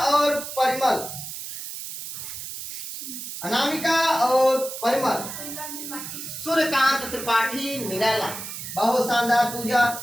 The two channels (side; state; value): right; noise; hiss, 8 dB below the sound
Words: और परिमल। अनामिका और परिमल, सूर्यकांत त्रिपाठी निराला। बहुत शानदार पूजा।